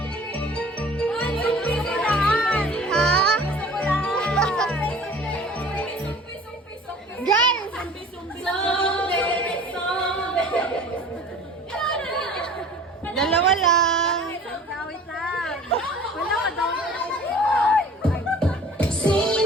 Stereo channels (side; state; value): both; normal; correlation 0.46